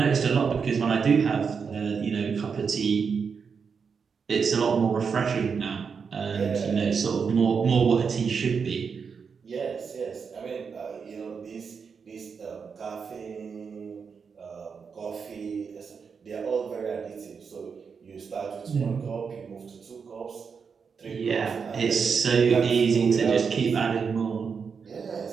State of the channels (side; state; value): left; quieter; 5.9 dB